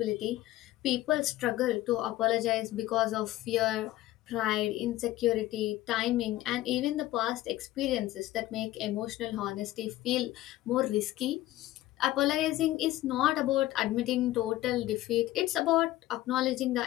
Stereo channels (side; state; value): right; quieter; 15.9 dB